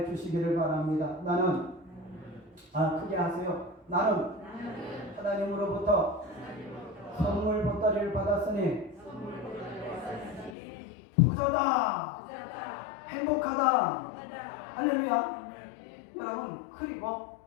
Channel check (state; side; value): drops out; right; at 10.6 s